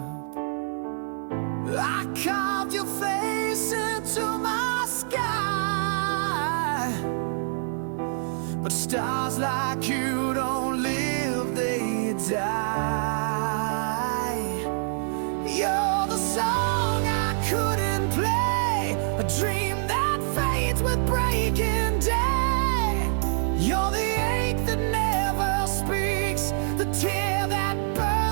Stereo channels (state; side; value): silent; left; 61 dB below the other